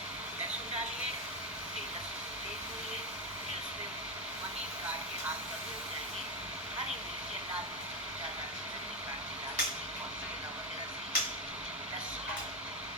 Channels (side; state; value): both; normal; correlation 0.10